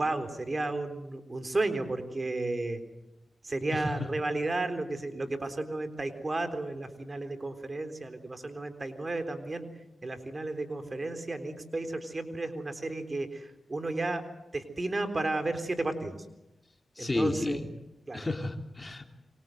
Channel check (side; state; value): both; normal; correlation 0.95